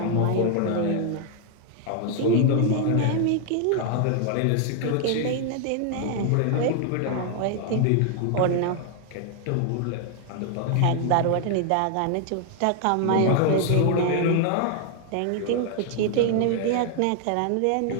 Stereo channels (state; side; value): different; both; correlation 0.00